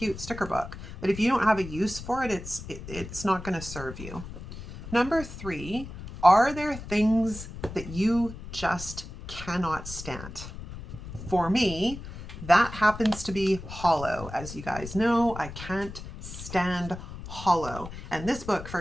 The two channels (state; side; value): noise; left; rumble, 12 dB below the sound